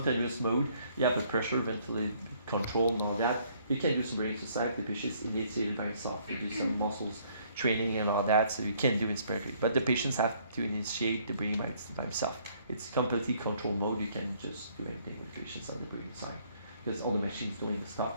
mode, you have the pressure, ventilation control and all that, you can do some breathing exercise. The patient is initiated by himself. You do some muscles training and all that, so you can do inspiratory. But the patients have to initiate the breathing by himself. It's completely control mode. You can just do anything with patients on the breathing side, because all the machines doing the stuff,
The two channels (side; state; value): both; inverted; correlation -0.64